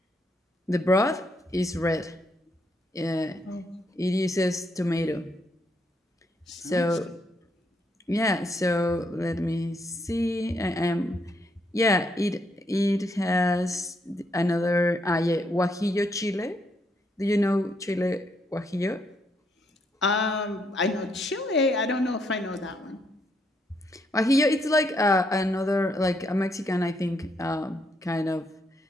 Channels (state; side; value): normal; both; correlation 0.75